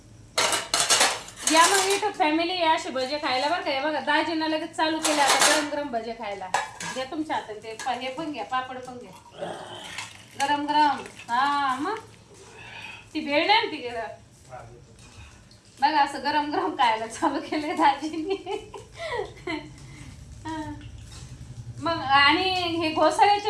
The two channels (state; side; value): identical; both; correlation 1.00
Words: या मग इथं फॅमिली असे भजे खायला बरं का. हे बघा दाजीनं लगेच चालू केलं आता गरम गरम भजे खायला. घ्या तुमच्या हातात ते हे पण घ्या, पापड पण घ्या गरम गरम. हा मग ती भेळ नाही ती बघा असं गरम गरम खायला चालू केलंय दाजींनी. मग आणि हे घोसाळ्याचे